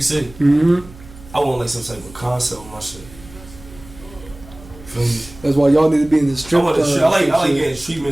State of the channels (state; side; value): noise; right; hum, 20 dB below the sound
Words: see. I want like some type of concept with my shit. Feel me? That's why y'all need to be in the strip. I like getting